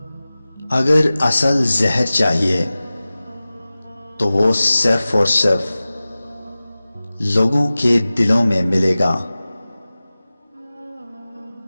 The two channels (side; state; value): both; inverted; correlation -0.97